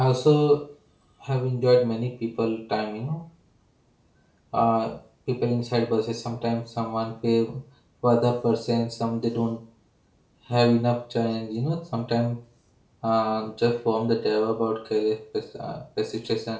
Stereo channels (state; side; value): identical; both; correlation 1.00